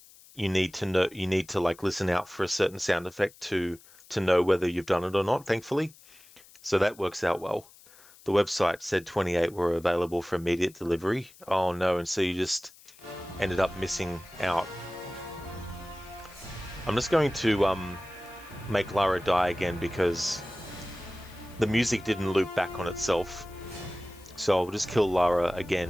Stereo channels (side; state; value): left; noise; hiss, 24 dB below the sound